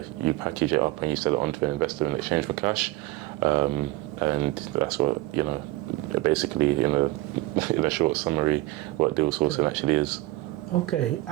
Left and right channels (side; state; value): left; quieter; 18.8 dB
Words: package it up and you sell it on to an investor in exchange for cash. And that's what, basically in a short summary, what deal sourcing actually is. Okay,